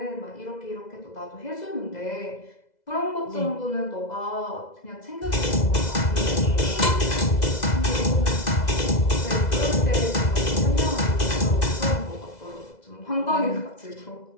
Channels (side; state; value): right; late; 2.0 ms